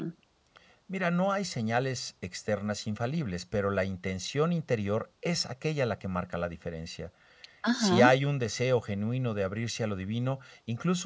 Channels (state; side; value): identical; both; correlation 1.00